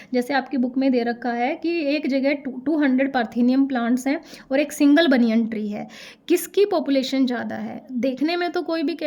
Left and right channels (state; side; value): identical; both; correlation 1.00